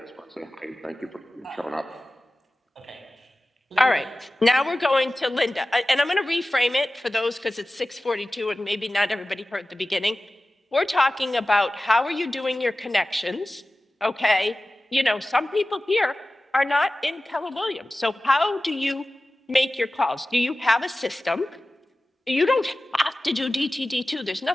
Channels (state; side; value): normal; both; correlation 0.96